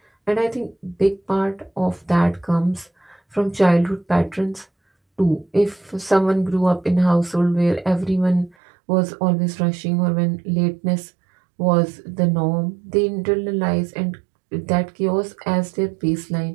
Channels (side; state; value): left; drops out; at 8.6 s